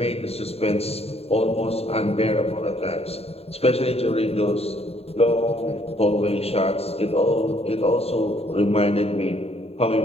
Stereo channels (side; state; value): right; late; 0.29 ms